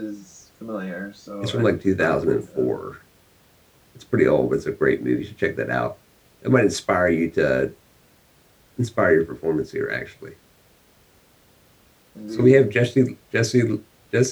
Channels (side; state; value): both; identical; correlation 1.00